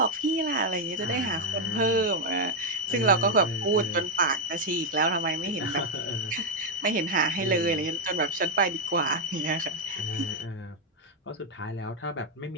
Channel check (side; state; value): both; normal; correlation 0.01